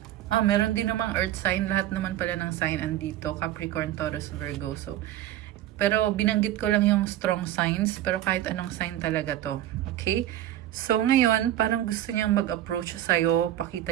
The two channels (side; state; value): left; quieter; 13.0 dB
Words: Meron din namang earth sign. Lahat naman pala ng sign andito. Capricorn, Taurus, Virgo. So, pero binanggit ko lang yung strong signs. Pero kahit anong sign talaga to. Okay? So, ngayon, parang gusto niyang mag-approach sa'yo.